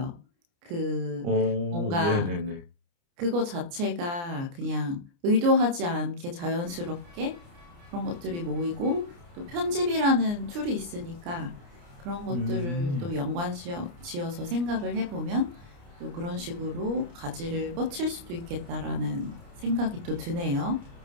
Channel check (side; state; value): left; late; 29 ms